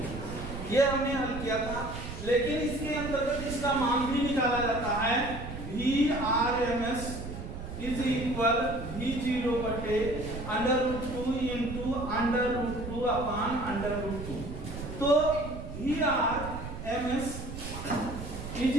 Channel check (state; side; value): noise; right; rumble, 9 dB below the sound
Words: ये हमने हल किया था, लेकिन इसके अंतर्गत इसका मान भी निकाला जाता है। VRMS इज इक्वल V0 बटे √2 इंटू √2/√2। तो VRMS इज